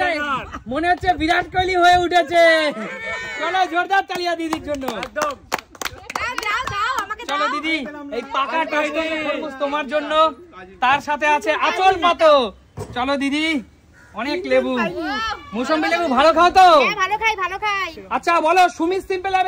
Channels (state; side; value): identical; both; correlation 1.00